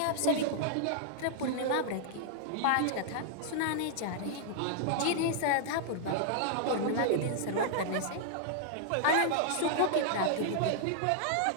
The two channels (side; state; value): both; different; correlation -0.01